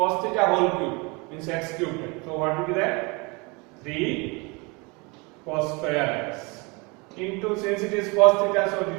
theta whole cube means x cube. So what will be that? 3 cos square x into, since it is cos theta, so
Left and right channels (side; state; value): left; quieter; 28.4 dB